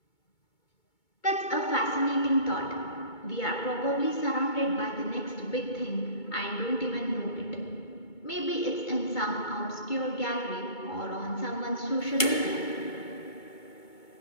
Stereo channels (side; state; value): right; late; 2.2 ms